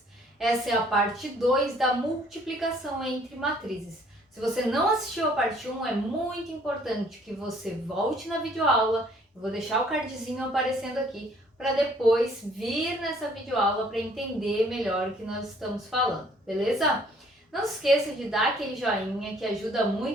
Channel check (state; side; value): normal; both; correlation 0.60